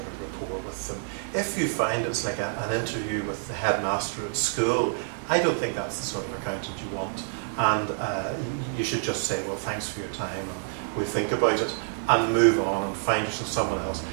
of rapport with them. If you find it's like an interview with the headmaster at school, I don't think that's the sort of accountant you want. And you should just say, well, thanks for your time, and we'll think about it, and move on and find yourself someone else.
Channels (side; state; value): left; silent; digital silence